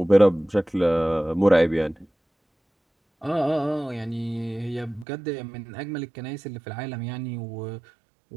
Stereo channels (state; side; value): drops out; left; at 5.1 s